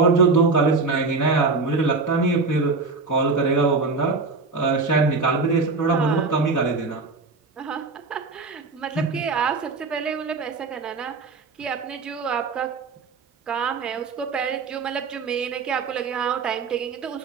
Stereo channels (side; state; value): left; quieter; 4.1 dB